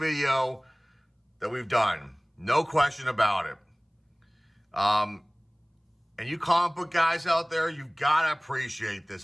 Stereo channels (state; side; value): identical; both; correlation 1.00